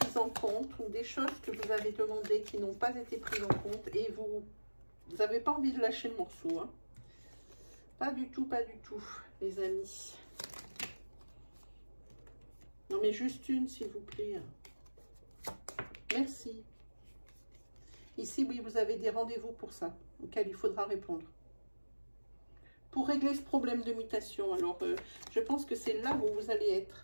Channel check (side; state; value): both; inverted; correlation -1.00